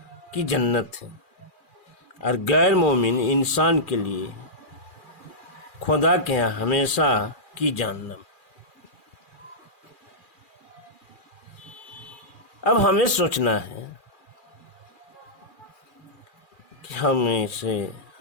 کی جنت ہے، اور غیر مومن انسان کے لیے خدا کے ہاں ہمیشہ کی جہنم۔ اب ہمیں سوچنا ہے کہ ہم اسے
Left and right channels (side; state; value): right; late; 2.4 ms